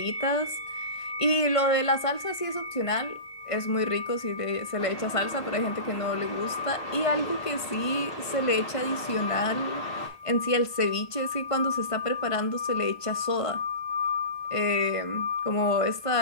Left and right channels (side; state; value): right; late; 1.5 ms